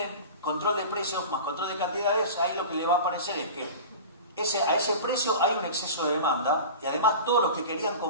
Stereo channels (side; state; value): both; inverted; correlation -0.33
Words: control de precios más control de cantidades, ahí lo que le va a aparecer es que a ese precio hay un exceso de demanda y además todos los que querían,